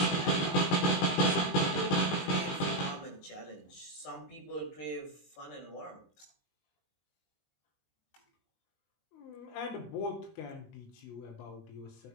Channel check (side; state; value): right; late; 19 ms